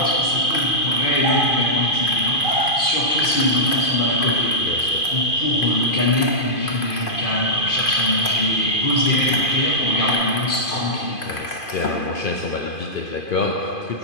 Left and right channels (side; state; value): right; late; 2.5 ms